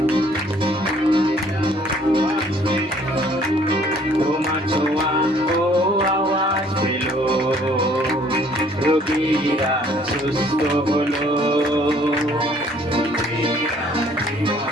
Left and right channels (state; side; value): normal; both; correlation 0.59